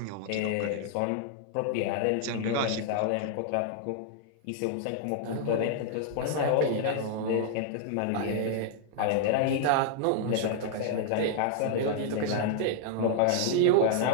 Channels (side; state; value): both; different; correlation -0.01